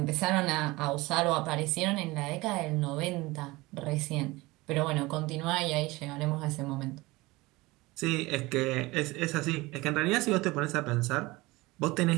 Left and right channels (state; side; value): quieter; left; 21.5 dB